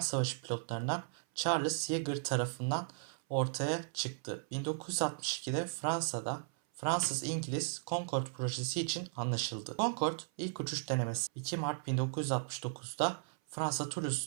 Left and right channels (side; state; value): left; silent; 54 dB below the other